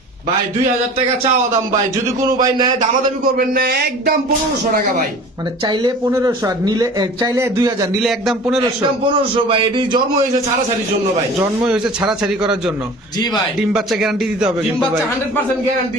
ভাই 2000 টাকা চাওয়া দাম ভাই, যদি কোনো ভাই নেয় দামাদামি করবেন না, একদম 1500 টাকা ভাই। মানে চাইলে 1500 আর নিলে চাইলে 2000, নিলে একদম 1500? একদম 1500 ভাই। এটি জন্ম হয়েছে ছাড়াছাড়ির জন্য ভাই। জন্মই হয়েছে ছাড়াছাড়ি করার জন্য? জি ভাই। ডিম বাচ্চা গ্যারান্টি দিতে হবে ডিম কিন্তু বাচ্চা ভাই? 100% গ্যারান্টি।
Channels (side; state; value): both; normal; correlation 0.42